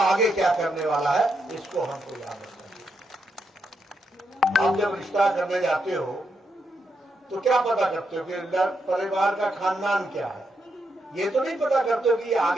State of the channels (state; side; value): normal; both; correlation 0.81